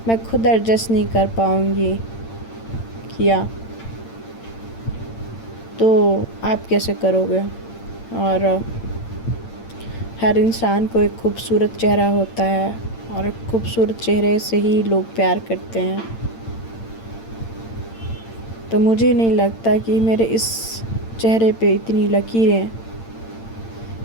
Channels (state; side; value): late; right; 8.8 ms